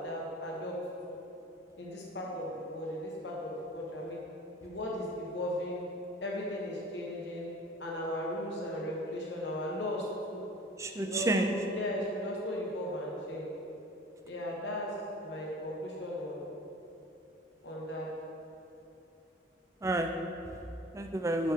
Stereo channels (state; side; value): normal; both; correlation 0.44